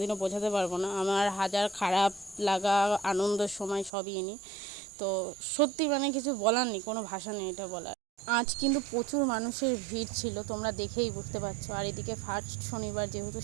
বোঝাতে পারবো না। আমার হাজার খারাপ লাগা, আনন্দের সময় সবই এনি। তো সত্যি মানে কিছু বলার নেই, কোনো ভাষা নেই এটা বলার। আজ কিন্তু প্রচুর মানুষের ভিড় ছিল, তোমরা দেখেই বুঝতে পারছো। আর এদিকে ফার্স্ট শনিবার যেহেতু,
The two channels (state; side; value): drops out; left; at 3.9 s